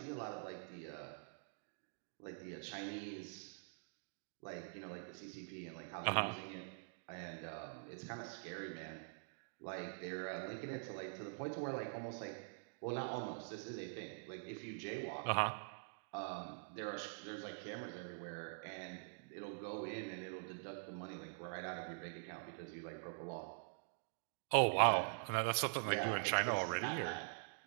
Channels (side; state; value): left; silent; digital silence